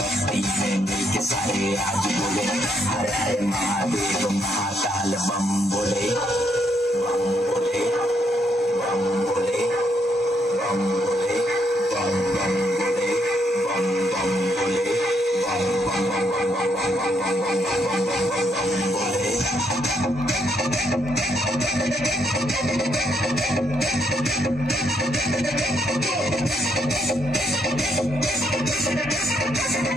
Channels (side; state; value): both; normal; correlation 0.75